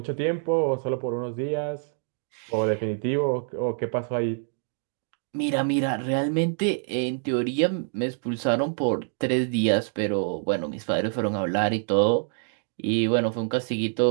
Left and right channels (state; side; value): silent; left; 61 dB below the other